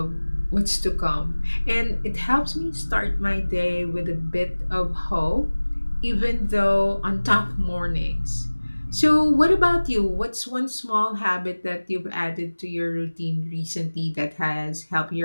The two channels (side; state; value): both; inverted; correlation -1.00